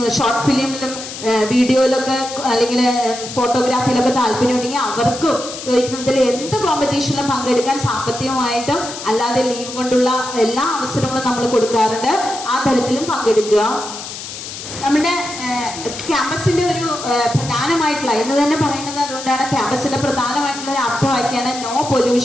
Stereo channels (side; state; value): left; noise; hiss, 10 dB below the sound